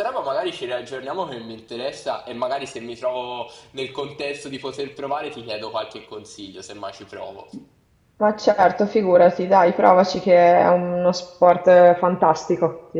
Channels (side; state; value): both; identical; correlation 1.00